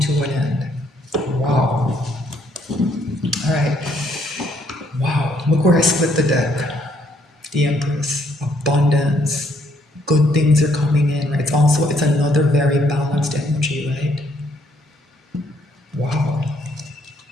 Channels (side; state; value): both; normal; correlation 0.69